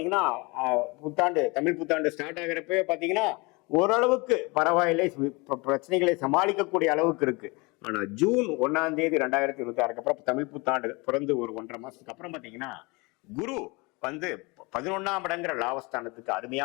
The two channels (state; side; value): quieter; right; 26.7 dB